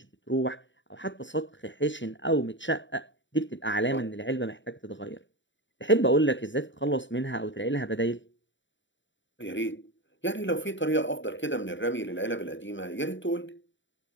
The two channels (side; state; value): right; late; 0.54 ms